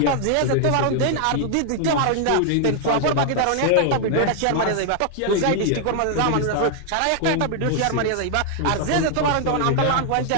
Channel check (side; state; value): both; different; correlation 0.00